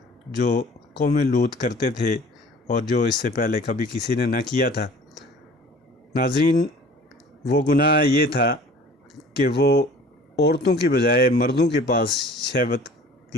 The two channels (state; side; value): normal; both; correlation 0.47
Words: جو قوم لوط کرتے تھے اور جو اس سے پہلے کبھی کسی نے نہ کیا تھا۔ ناظرین، وہ گناہ یہ تھا کہ وہ عورتوں کی بجائے مردوں کے پاس شہوت